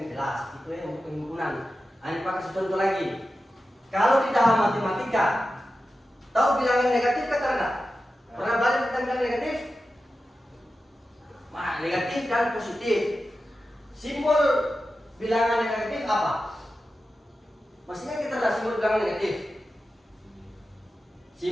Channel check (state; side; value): normal; both; correlation 0.92